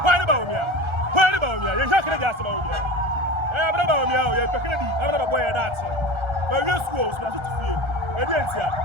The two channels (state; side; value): late; left; 1.3 ms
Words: Why ne ba wo mia? Why ne ba wo mia? Ye hwa kene di ase ba wo mia. Abra ba wo mia o ye pekene di. Abra ba boy that. But we schools na to fie. E di entia.